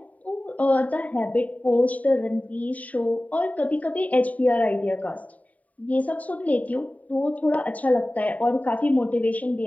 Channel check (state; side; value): late; right; 0.070 ms